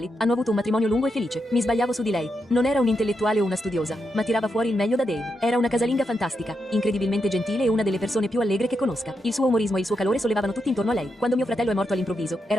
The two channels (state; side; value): normal; both; correlation 0.84